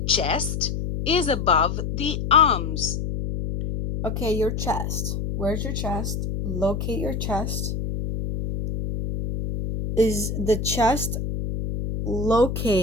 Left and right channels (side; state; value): left; noise; hum, 3 dB below the sound